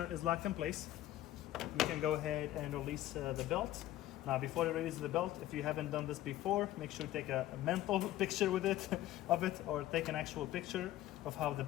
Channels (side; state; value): right; quieter; 14.3 dB